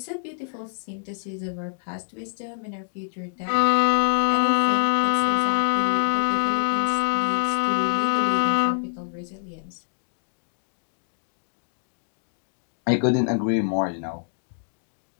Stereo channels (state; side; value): silent; right; digital silence